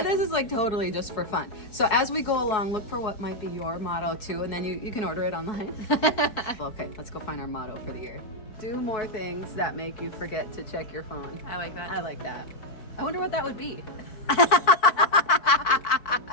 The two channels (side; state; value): right; late; 4.6 ms